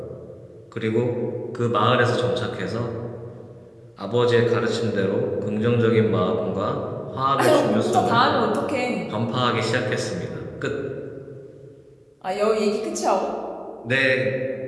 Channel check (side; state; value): both; identical; correlation 1.00